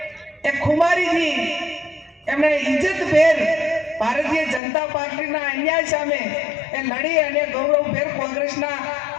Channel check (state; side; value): drops out; right; at 4.6 s